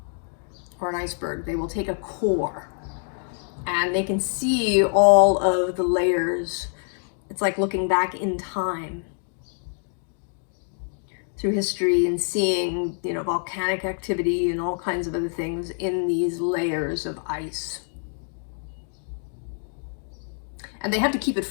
or an iceberg. They will take a core and they can see all of the layers. It's like looking back in time through history and seeing, you know, volcanic activity and all kinds of other things in these layers of ice. And they have to keep it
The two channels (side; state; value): right; silent; 55 dB below the other